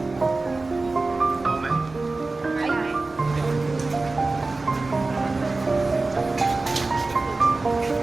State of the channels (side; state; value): left; quieter; 3.4 dB